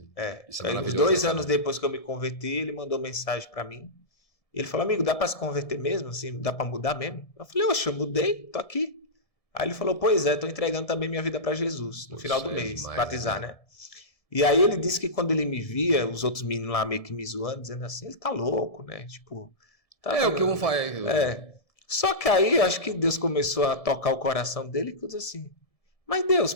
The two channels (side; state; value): right; late; 1.7 ms